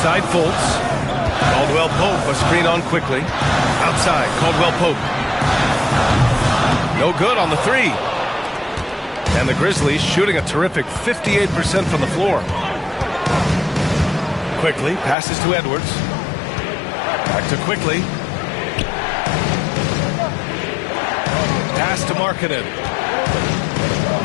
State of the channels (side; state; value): right; drops out; at 15.2 s